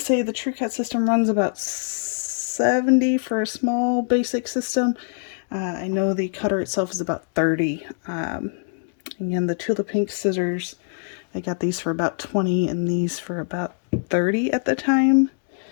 the Trucut system runs about $70 for a small basic system. I know the cutter itself is about $30. Again, the Tula Pink scissors, I got these for about $20 and these for about $30 at the time.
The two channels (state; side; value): silent; right; digital silence